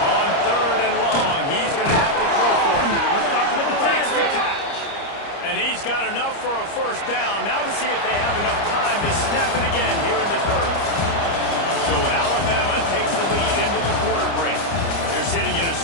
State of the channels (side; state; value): right; late; 30 ms